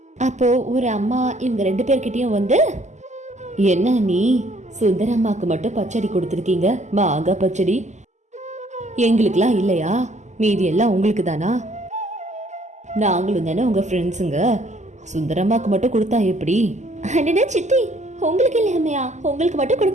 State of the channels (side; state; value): left; late; 0.34 ms